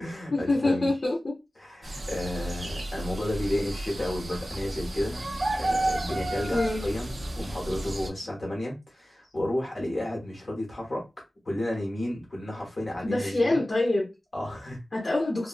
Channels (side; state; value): both; normal; correlation 0.96